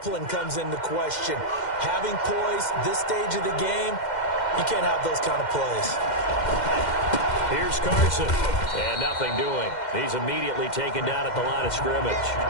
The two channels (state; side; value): late; right; 2.1 ms